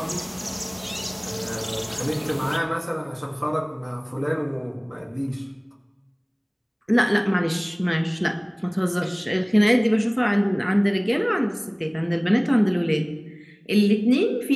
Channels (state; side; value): identical; both; correlation 1.00